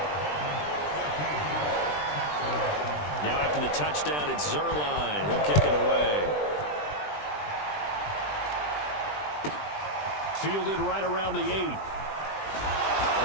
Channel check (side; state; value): right; late; 20 ms